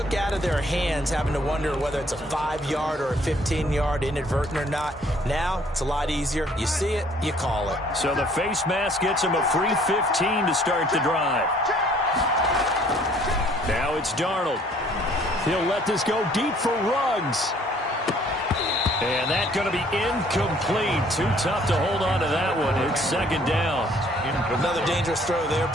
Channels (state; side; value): normal; both; correlation 0.60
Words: out of their hands having to wonder whether it's a 5-yard or a 15-yard inadvertent or not. Now, it's a lot easier. You see it, you call it. So the face mask gets him a free 15 to start the drive. Now it's Darnold. He'll let this go deep for Ruggs. And that's going to be incomplete. Too tough to hold on to that one. It's 2nd down. Another dangerous throw there,